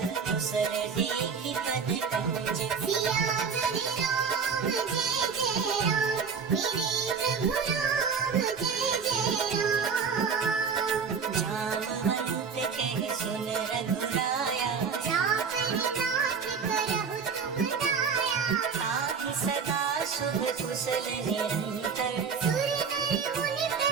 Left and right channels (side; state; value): left; quieter; 6.0 dB